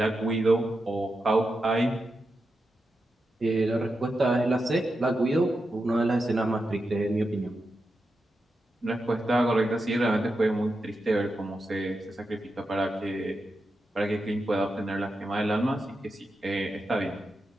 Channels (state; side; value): normal; both; correlation 0.88